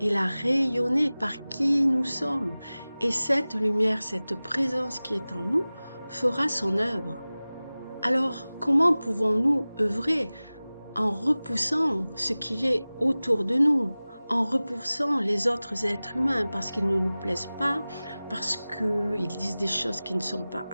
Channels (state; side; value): inverted; both; correlation -0.98